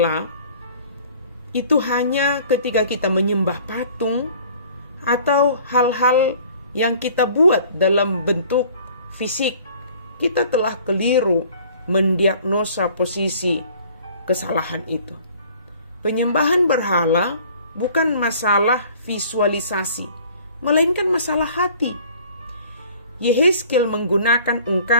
itu hanya ketika kita menyembah patung atau hal-hal yang kita buat dalam bentuk fisik, kita telah keliru mendiagnosa posisi kesalahan itu. Penyembahan berhala bukan masalah visualisasi, melainkan masalah hati. Yehezkiel menggunakan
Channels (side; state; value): both; inverted; correlation -0.52